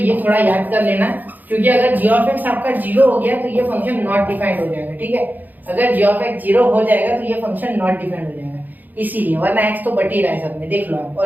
थोड़ा याद कर लेना, क्योंकि अगर g ऑफ x आपका 0 हो गया तो ये फंक्शन नॉट डिफाइंड हो जाएगा, ठीक है। अगर g ऑफ x 0 हो जाएगा तो ये फंक्शन नॉट डिफाइंड हो जाएगा, इसीलिए, वरना x तो बट ही रहा है सब में, देख लो आप,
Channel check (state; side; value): late; left; 0.084 ms